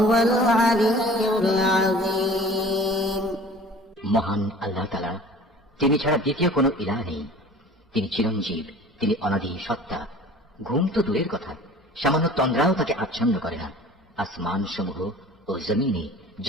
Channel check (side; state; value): both; normal; correlation 0.45